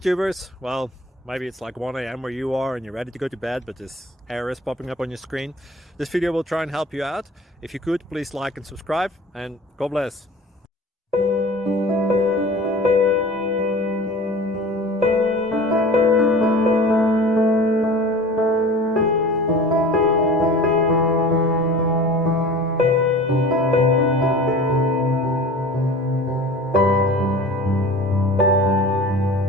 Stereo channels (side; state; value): both; normal; correlation 0.40